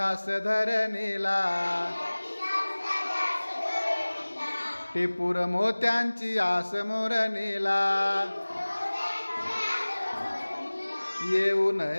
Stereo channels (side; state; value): both; inverted; correlation -1.00